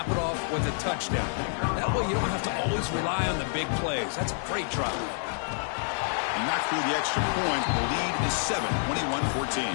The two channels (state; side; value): silent; right; 59 dB below the other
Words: it off with a touchdown. That way you don't have to always rely on the big plays. That's a great drive. Knocked through the extra point. The lead is 7, 21-14.